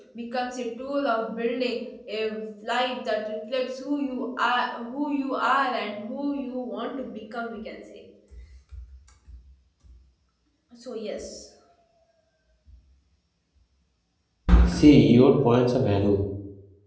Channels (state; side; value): identical; both; correlation 1.00